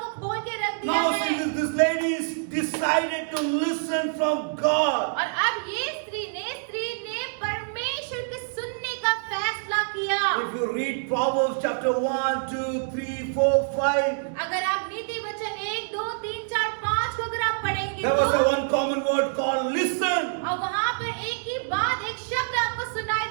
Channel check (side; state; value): left; silent; digital silence